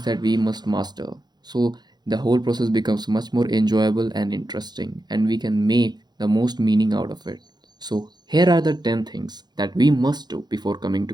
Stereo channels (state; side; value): late; left; 0.20 ms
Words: that we must master. So the whole process becomes much more enjoyable and interesting, and we can make the most meaning out of it. So here are the 10 things that we must do before coming